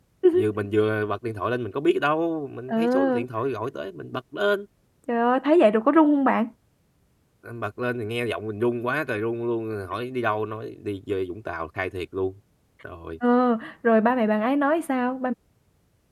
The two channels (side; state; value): both; identical; correlation 1.00